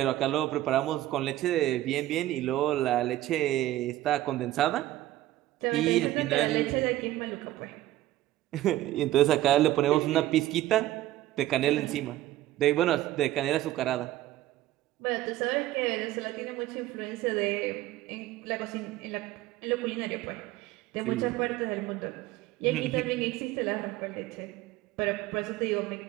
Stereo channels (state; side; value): quieter; left; 15.0 dB